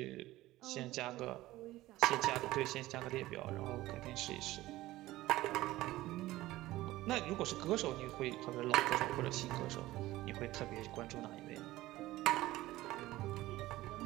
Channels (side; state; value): left; quieter; 17.0 dB